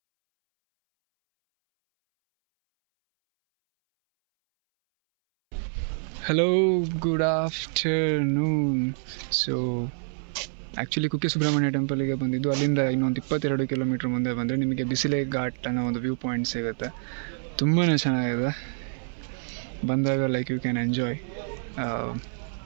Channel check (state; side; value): silent; left; 60 dB below the other